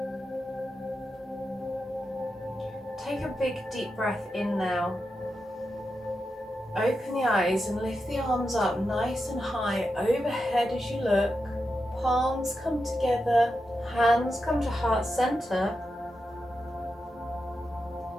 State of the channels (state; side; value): normal; both; correlation 0.88